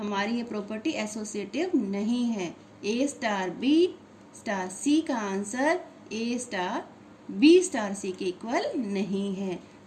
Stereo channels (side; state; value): both; identical; correlation 1.00